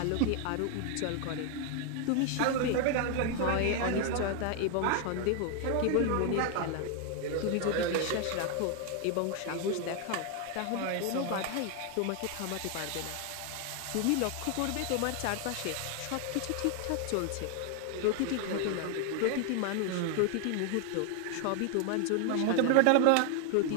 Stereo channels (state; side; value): different; both; correlation 0.01